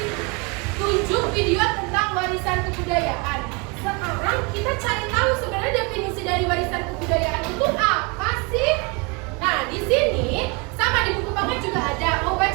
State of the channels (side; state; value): left; quieter; 29.6 dB